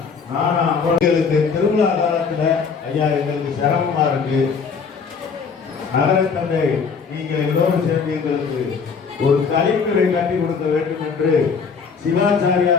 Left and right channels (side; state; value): right; quieter; 5.6 dB